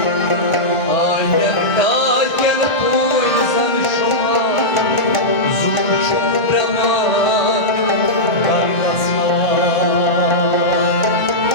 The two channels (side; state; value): right; late; 1.5 ms